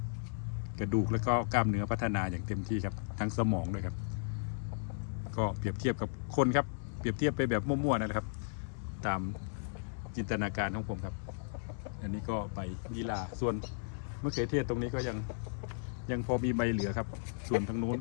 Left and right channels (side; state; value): right; silent; 54 dB below the other